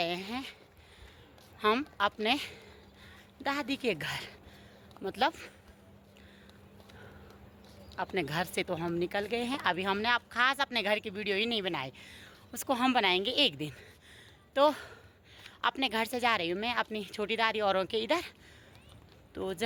हैं हम अपने दादी के घर। मतलब अपने घर से तो हम निकल गए हैं, अभी हमने अब खास अपने घर की वीडियो ही नहीं बनाई, उसको हम बनाएंगे एक दिन। तो अपने घर से जा रही हूँ मैं अपनी छोटी दादी औरों के इधर। तो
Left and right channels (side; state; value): both; identical; correlation 1.00